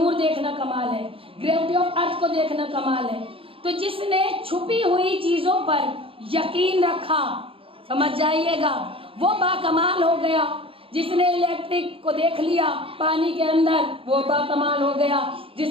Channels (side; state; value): left; late; 0.27 ms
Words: دیکھنا کمال ہے، گریوٹی آف ارتھ کو دیکھنا کمال ہے۔ تو جس نے چھپی ہوئی چیزوں پر یقین رکھا، سمجھ جائیے گا، وہ با کمال ہو گیا۔ جس نے الیکٹرک کو دیکھ لیا پانی کے اندر، وہ با کمال ہو گیا۔